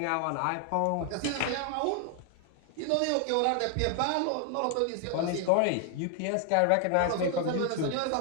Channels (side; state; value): both; different; correlation 0.00